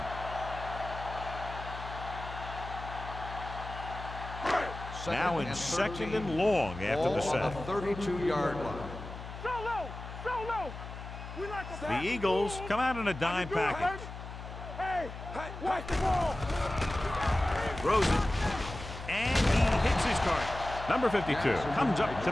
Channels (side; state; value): left; noise; hum, 11 dB below the sound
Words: Now in 2nd and long after the sack. Ball on the 32-yard line. So low, so low. We like a The Eagles come out in a dime package. Hey, watch the ball. Throws it. And he hits his target. Number 52 comes up to